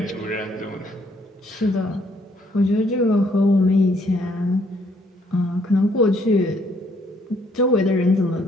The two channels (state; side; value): normal; both; correlation 0.67